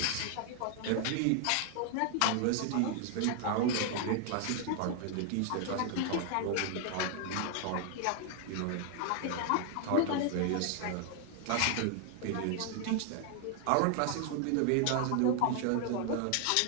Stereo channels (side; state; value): both; different; correlation 0.00